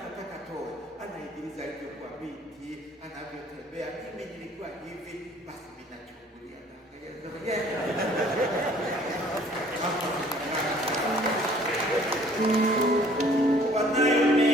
toe, anaigiliza alivyokuwa binti, anavyotembea. Mimi nilikuwa hivi, basi mimi nachungulia na wanayo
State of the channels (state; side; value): normal; both; correlation 0.56